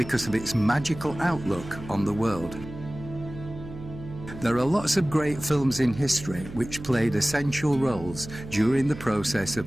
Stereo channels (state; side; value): noise; right; hum, 13 dB below the sound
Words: of its magical outlook on the world. There are lots of great films in history which played essential roles during the process